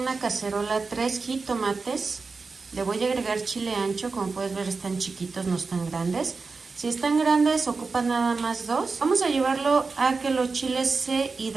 cacerola 3 jitomates, le voy a agregar chile ancho, como puedes ver están chiquitos, no están grandes. Si están grandes ocupan nada más 2. Vamos a llevarlo a que los chiles se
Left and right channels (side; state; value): left; quieter; 4.3 dB